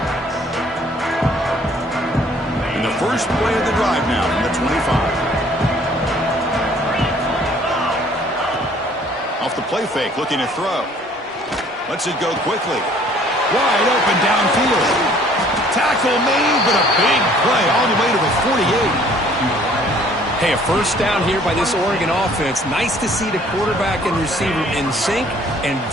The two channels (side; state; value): both; normal; correlation 0.57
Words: And the first play of the drive now from the 25. Off the play fake, looking to throw. Lets it go quickly. Wide open downfield. Tackle made, but a big play all the way to the 48. Hey, a first down here by this Oregon offense. Nice to see the quarterback and receiver in sync and